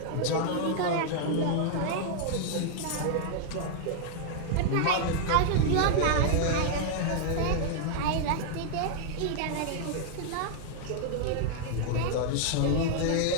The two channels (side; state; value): both; different; correlation -0.01